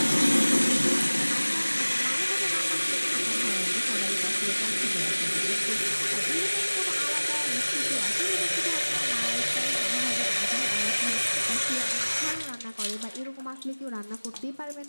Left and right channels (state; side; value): inverted; both; correlation -1.00